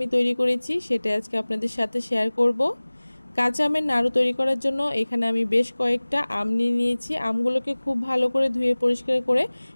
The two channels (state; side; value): inverted; both; correlation -1.00